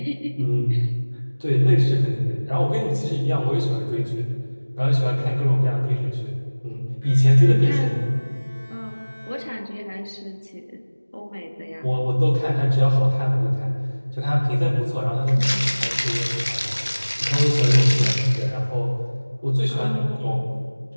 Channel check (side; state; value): both; inverted; correlation -1.00